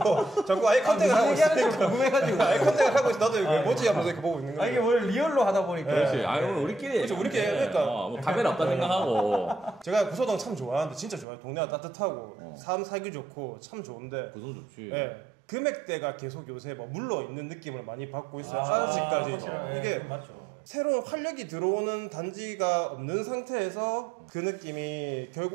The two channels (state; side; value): drops out; left; at 11.2 s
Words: 자꾸 아이 컨택을 하고 있으니까. 궁금해가지고 아이 컨택을 하고 있어. 나도 이거 뭐지 하면서 이렇게 보고 있는 거예요. 이게 원래 리얼로 하다 보니까 그렇지. 아니 오늘 우리끼리 그렇죠. 우리끼리 그러니까. 뭐 카메라 없다 생각하고 제가 구서동 참 좋아하는데 진짜 좋아요. 동네가 따뜻하고 삶 살기 좋고 참 좋은데 구성 좋지. 예. 금액대가 계속 요새 뭐 물러 있는 느낌을 많이 받고 있어요. 아, 아직까지. 확실하네. 이게 맞죠. 새로운 활력이 들어오는 단지가 없는 상태에서 그 느낌이